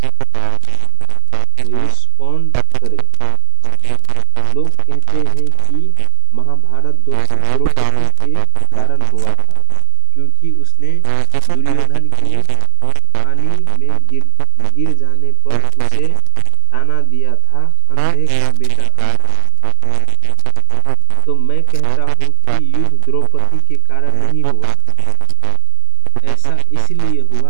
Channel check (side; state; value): both; different; correlation 0.00